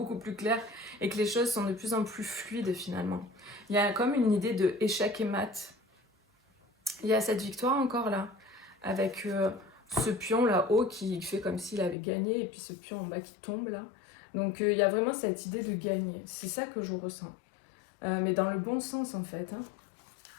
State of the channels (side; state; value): right; drops out; at 12.0 s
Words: plus clair et que les choses sont de plus en plus fluides finalement. Il y a comme une idée de échec et mat. Il y a cette victoire encore là, avec ce pion là-haut qui fait comme s'il avait gagné et puis ce pion en bas qui tombe là. Donc il y a vraiment cette idée de gagner. C'est ça que je ressens. Mais dans le bon sens en fait. Hein.